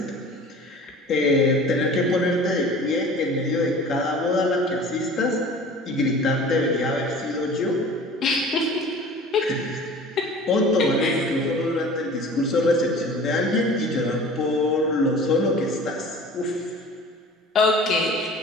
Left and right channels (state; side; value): normal; both; correlation 0.43